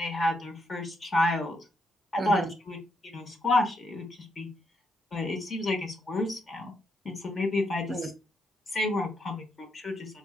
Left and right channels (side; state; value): both; normal; correlation 0.78